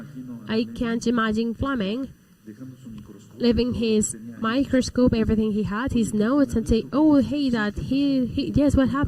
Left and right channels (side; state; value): both; identical; correlation 1.00